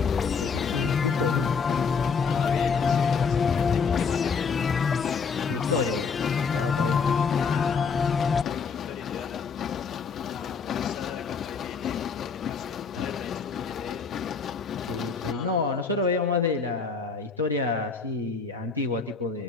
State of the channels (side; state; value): right; quieter; 5.4 dB